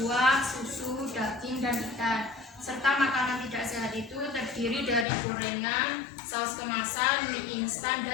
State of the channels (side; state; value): right; drops out; at 5.1 s